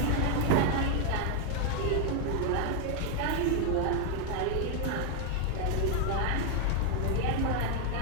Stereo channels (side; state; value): both; different; correlation 0.00